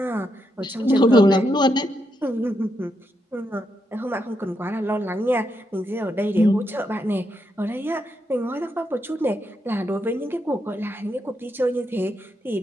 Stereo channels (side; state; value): both; normal; correlation 0.81